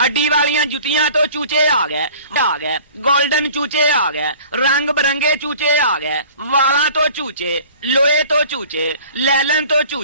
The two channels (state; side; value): inverted; both; correlation -0.48